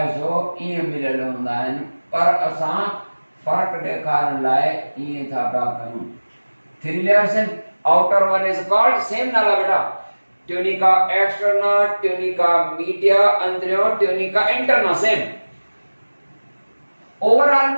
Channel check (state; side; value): inverted; both; correlation -1.00